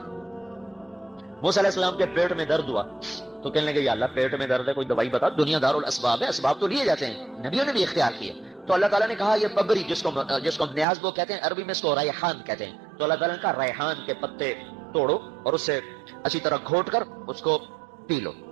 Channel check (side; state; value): left; drops out; at 10.9 s